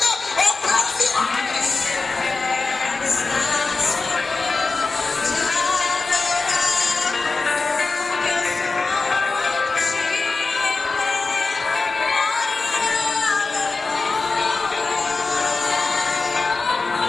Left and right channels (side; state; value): right; quieter; 3.9 dB